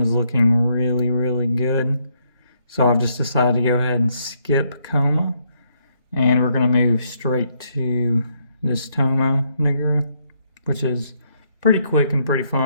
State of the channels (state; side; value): inverted; both; correlation -0.73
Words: looking really, really good. So I've just decided to go ahead and skip Koma, and we're gonna move straight to this Tomo nigger, which is pretty quick and pretty